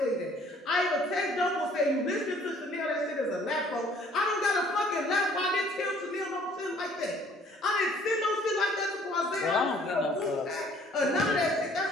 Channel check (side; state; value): both; normal; correlation 0.58